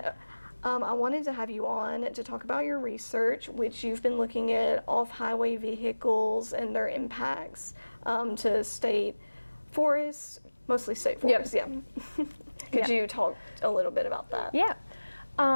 I wanted to have you on to talk about your research, which you've been looking at off-highway vehicles and their impacts to state forests, mostly state forests, yeah. Could you talk a little bit about that? Yeah.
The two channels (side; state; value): both; inverted; correlation -1.00